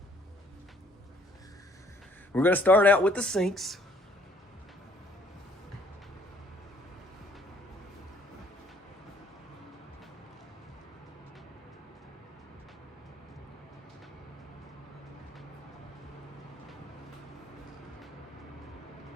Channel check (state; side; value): normal; both; correlation 0.61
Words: We're gonna start out with the sinks.